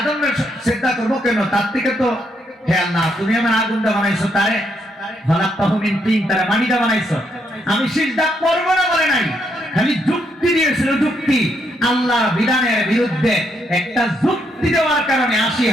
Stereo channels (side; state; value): both; normal; correlation 0.76